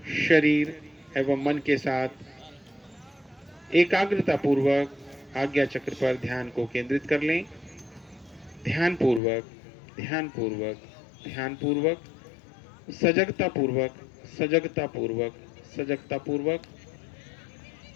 शरीर एवं मन के साथ एकाग्रता पूर्वक आज्ञा चक्र पर ध्यान को केंद्रित कर लें। ध्यान पूर्वक, ध्यान पूर्वक, ध्यान पूर्वक, सजगता पूर्वक, सजगता पूर्वक, सजगता पूर्वक।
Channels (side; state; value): right; drops out; at 9.2 s